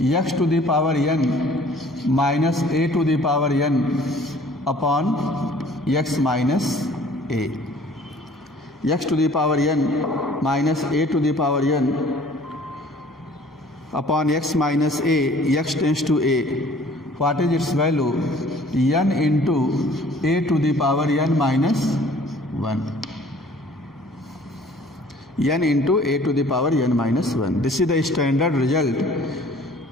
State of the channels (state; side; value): normal; both; correlation 0.53